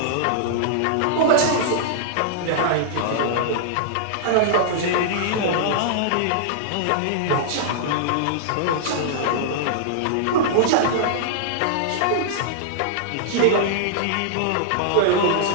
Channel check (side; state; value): both; different; correlation -0.01